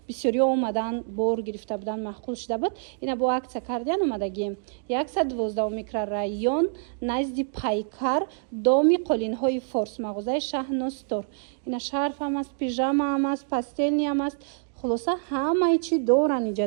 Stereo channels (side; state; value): left; silent; digital silence